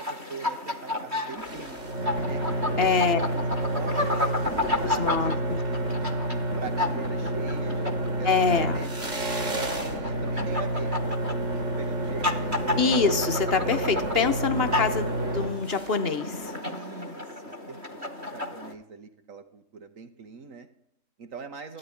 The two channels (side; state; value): left; late; 2.8 ms